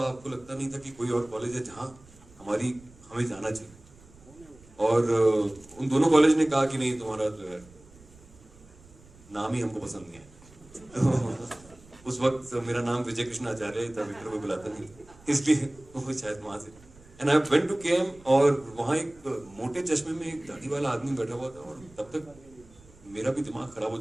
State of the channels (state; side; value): noise; right; rumble, 24 dB below the sound